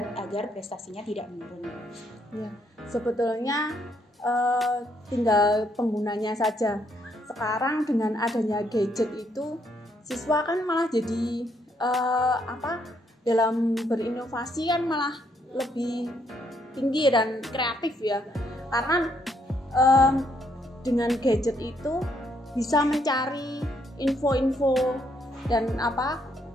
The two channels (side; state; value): both; normal; correlation 0.72